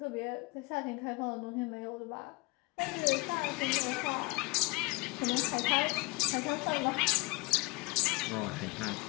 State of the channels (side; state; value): right; quieter; 25.0 dB